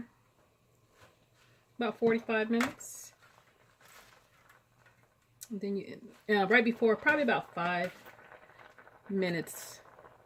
about 45 minutes. And then you, right before, probably about 5 minutes,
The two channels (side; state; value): both; identical; correlation 1.00